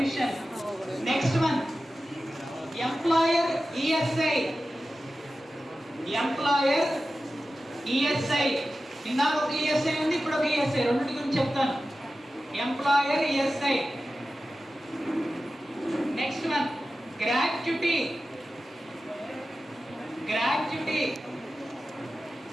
Next one employer ESI. Employer ESI. ఇందాక ఒక ఈఎస్ఐ ఉంది, ఇప్పుడు ఒక ఈఎస్ఐ. రెండింటి గురించి చెప్తాను. Employer ESI. Next one gratuity. Gratuity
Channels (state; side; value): normal; both; correlation 0.94